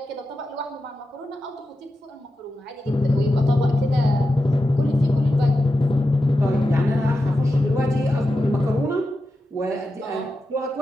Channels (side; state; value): both; normal; correlation 0.90